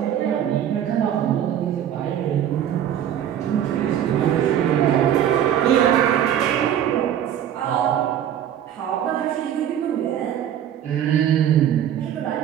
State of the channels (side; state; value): left; quieter; 10.2 dB